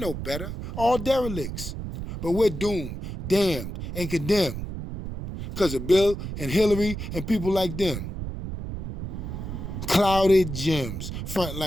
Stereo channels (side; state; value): right; noise; rumble, 7 dB below the sound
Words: no better. All derelicts. But we're doomed, damned, and condemned because of Bill and Hillary and people like them. Clouded gems, fronting